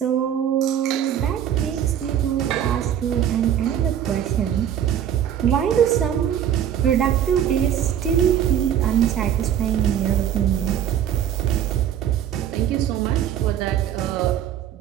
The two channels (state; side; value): quieter; left; 9.9 dB